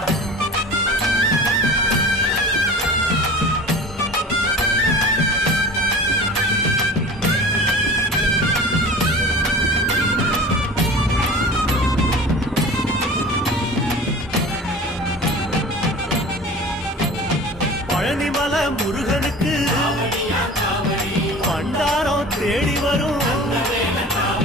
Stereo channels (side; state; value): both; normal; correlation 0.38